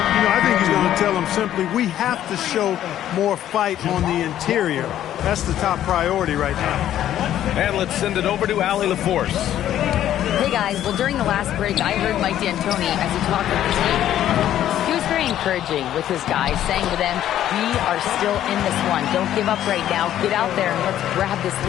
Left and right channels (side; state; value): right; quieter; 11.7 dB